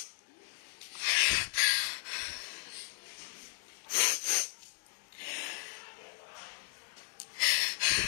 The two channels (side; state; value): right; silent; 54 dB below the other